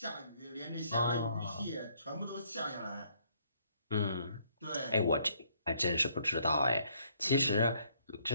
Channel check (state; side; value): inverted; both; correlation -0.67